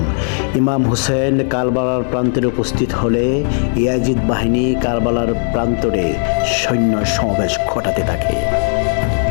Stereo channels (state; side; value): silent; right; digital silence